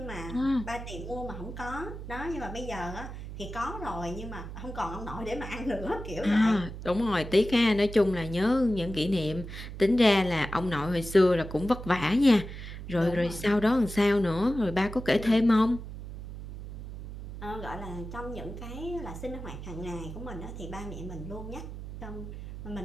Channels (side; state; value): right; noise; hum, 10 dB below the sound